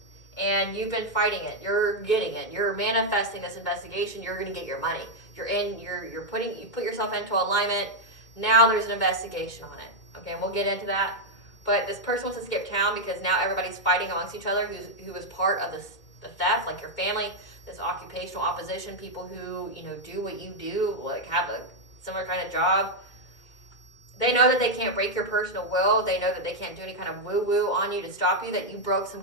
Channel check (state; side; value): late; right; 2.2 ms